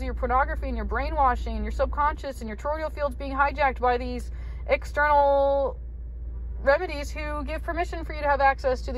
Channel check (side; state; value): both; identical; correlation 1.00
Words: your pornography and your brainwashing and your subconscious and your toroidal fields being hijacked by these external remedies who give permission for you to have access to